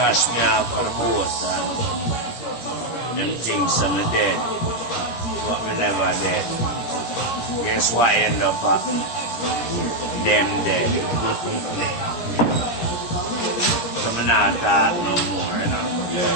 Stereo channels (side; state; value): right; late; 17 ms